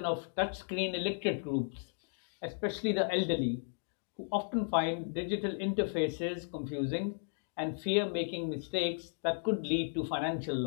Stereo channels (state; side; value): silent; right; digital silence